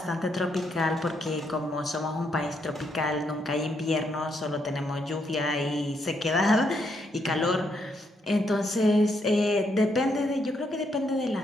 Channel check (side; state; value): both; normal; correlation 0.76